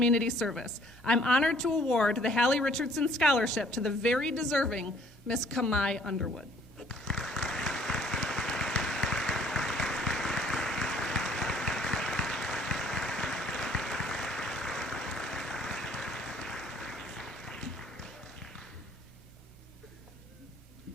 service. I'm honored to award the Hallie Richardson Scholarship to the very deserving Miss Kamai Underwood.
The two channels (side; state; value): both; normal; correlation 0.59